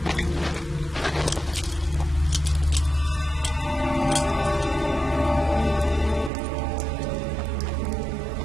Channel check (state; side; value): drops out; left; at 6.3 s